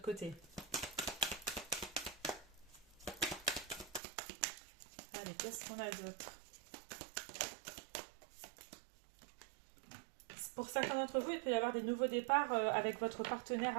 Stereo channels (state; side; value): drops out; left; at 4.0 s